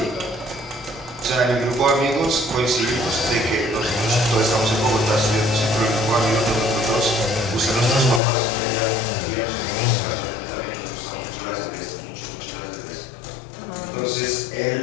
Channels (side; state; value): right; drops out; at 8.2 s